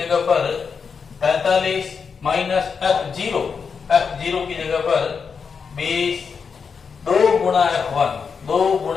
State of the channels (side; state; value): right; quieter; 5.8 dB